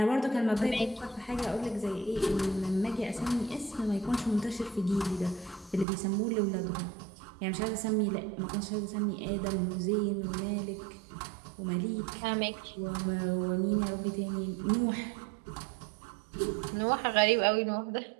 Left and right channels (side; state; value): left; drops out; at 5.9 s